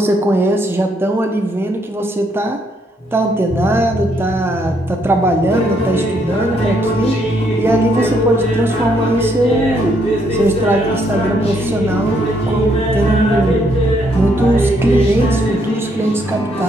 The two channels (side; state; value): both; normal; correlation 0.72